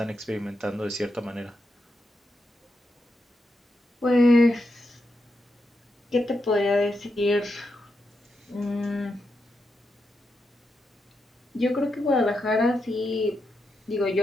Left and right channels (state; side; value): normal; both; correlation 0.85